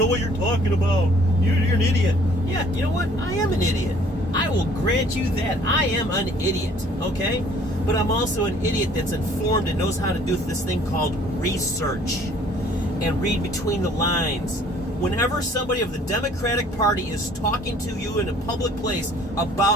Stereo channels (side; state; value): both; normal; correlation 0.56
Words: what you're talking about. You're an idiot. Yeah, you know what? I am an idiot. I will grant you that. I am an idiot, okay? But I'm also an idiot that's informed and knows how to do this thing called research and read between the lines. Whenever somebody of the Democratic Party is talking to you in a public place